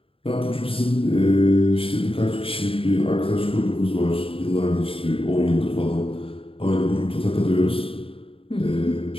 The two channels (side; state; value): right; late; 0.27 ms